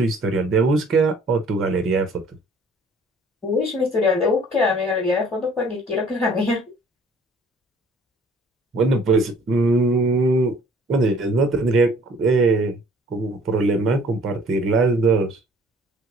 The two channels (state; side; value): normal; both; correlation 0.55